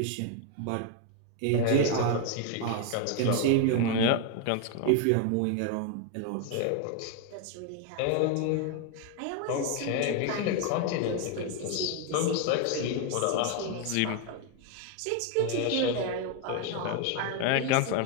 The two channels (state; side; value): different; both; correlation 0.01